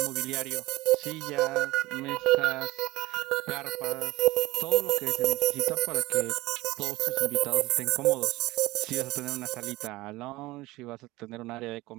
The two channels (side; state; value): left; quieter; 19.6 dB